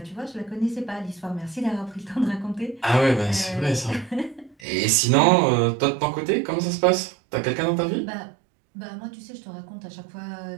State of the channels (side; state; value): left; drops out; at 4.5 s